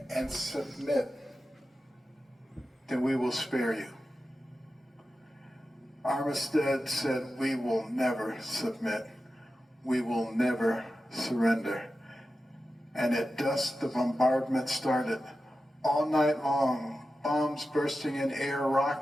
and submit, then we will spare you. Armistead said, we will never submit. We will never surrender. And at dusk, the bombardment started. All night long, bombs bursting in air,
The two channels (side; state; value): both; normal; correlation 0.92